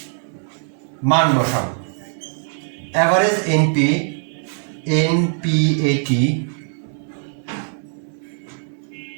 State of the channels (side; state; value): left; silent; 65 dB below the other